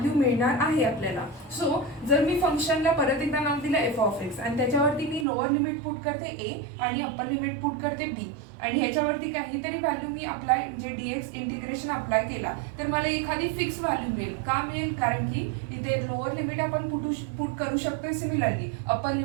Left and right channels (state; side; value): drops out; left; at 5.2 s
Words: मिळणार आहे आपल्याला. So जर मी फंक्शनला परत एकदा नाव दिलं एफ ऑफ एक्स आणि त्याच्यावरती मी लोअर लिमिट पुट करते ए आणि अप्पर लिमिट पुट करते बी आणि ह्याच्यावरती काहीतरी व्हॅल्यू मी अप्लाय म्हणजे डीएक्स इंटिग्रेशन अप्लाय केला तर मला एखादी फिक्स व्हॅल्यू मिळेल. का मिळेल? कारण की इथे लोअर लिमिट आपण पुट करू शकतोय, सिमिलरली अप्पर